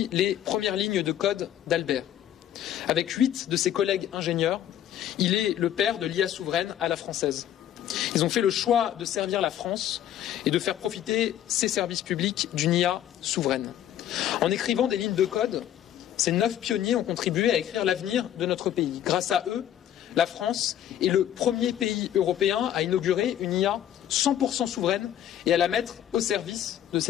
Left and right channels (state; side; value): quieter; right; 11.2 dB